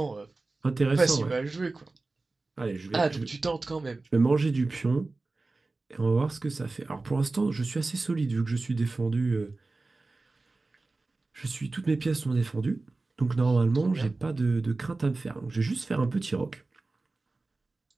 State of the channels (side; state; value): left; quieter; 3.4 dB